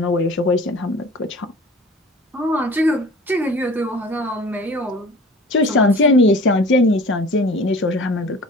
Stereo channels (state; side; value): normal; both; correlation 0.42